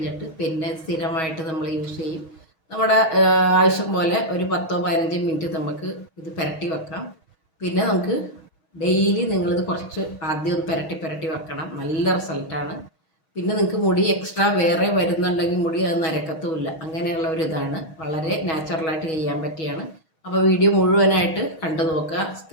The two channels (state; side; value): late; right; 6.3 ms